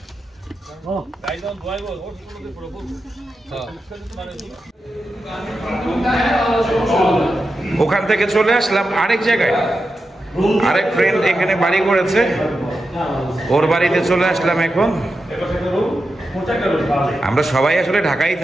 ও দাইজন দোয়াইবো ও শুকুলতে পুরো বল ওখান থেকে চলে আসলাম আরেক জায়গায়। আরেক ফ্রেন্ড এখানে বাড়ি করেছে, ওর বাড়িতে চলে আসলাম এখন। আমরা সবাই আসলে ঢাকায়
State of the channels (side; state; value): both; normal; correlation 0.89